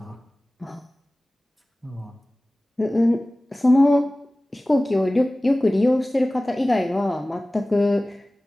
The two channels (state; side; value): normal; both; correlation 0.98